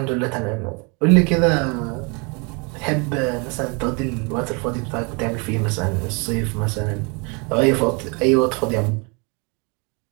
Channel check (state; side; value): quieter; left; 32.1 dB